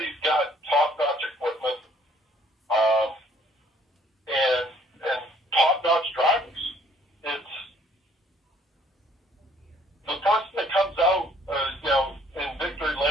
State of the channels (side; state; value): both; normal; correlation 0.61